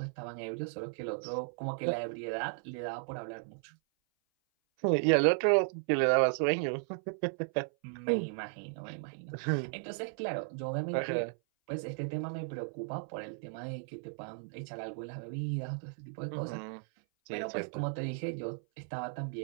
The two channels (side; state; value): left; silent; 54 dB below the other